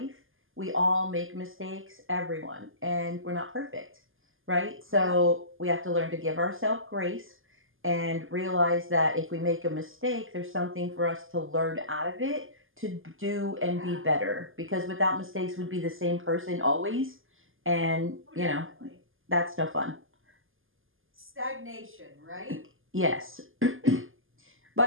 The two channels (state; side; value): late; left; 0.59 ms